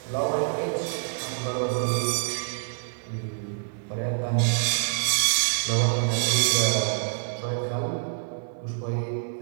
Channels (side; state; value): left; silent; 61 dB below the other